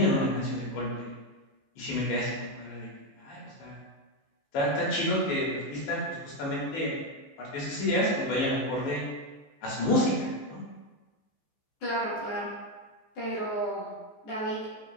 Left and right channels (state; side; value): late; right; 14 ms